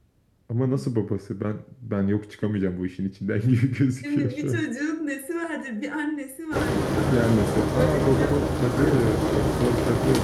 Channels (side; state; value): both; identical; correlation 1.00